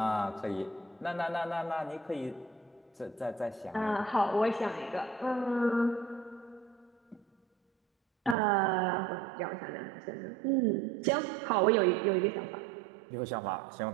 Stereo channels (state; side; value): drops out; left; at 8.3 s